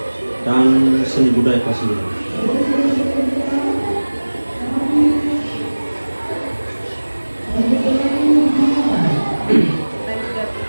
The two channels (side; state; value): both; inverted; correlation -1.00